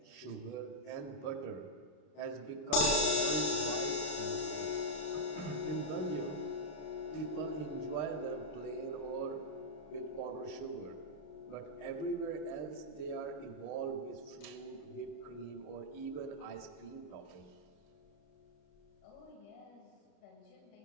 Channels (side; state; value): right; late; 32 ms